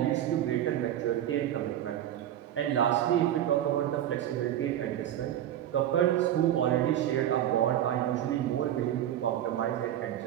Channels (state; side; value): quieter; left; 11.6 dB